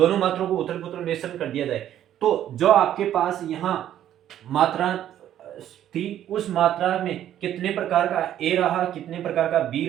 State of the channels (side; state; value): left; quieter; 11.4 dB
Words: मात्रों को उथल पुथल मिश्रण कर दिया जाए, तो जो आपके पास यहाँ मात्रा थी उस मात्रा में कितने प्रकार का ए रहा, कितने प्रकार का बी